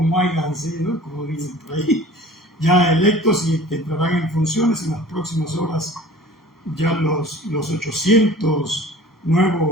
hayan sido, como dicen por ahí, ya electos y que entrarán en funciones en las próximas horas. Ya los 800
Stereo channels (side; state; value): both; normal; correlation 0.45